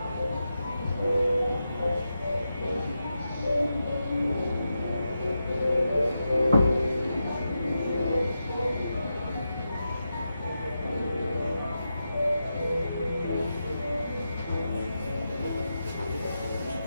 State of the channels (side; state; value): both; inverted; correlation -0.88